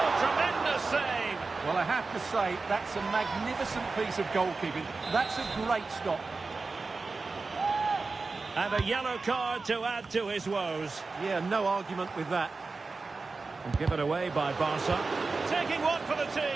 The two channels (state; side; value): quieter; left; 4.0 dB